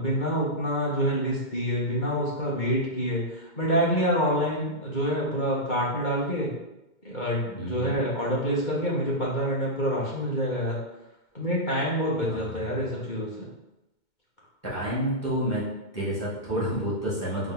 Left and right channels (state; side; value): late; right; 2.2 ms